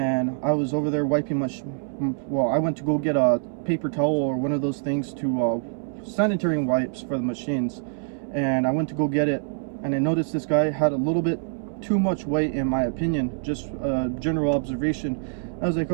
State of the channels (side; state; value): left; silent; 62 dB below the other